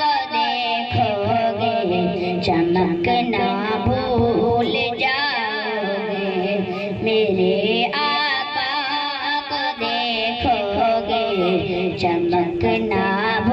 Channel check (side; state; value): both; identical; correlation 1.00